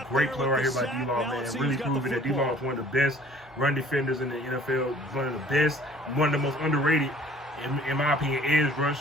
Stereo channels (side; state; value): both; normal; correlation 0.53